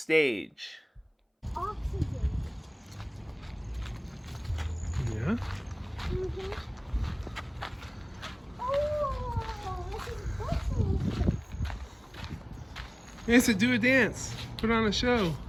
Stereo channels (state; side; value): identical; both; correlation 1.00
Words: Oxygen. Yeah? Mm-hmm. Oh, this is bushy. Yes, do a dance. Put on a show.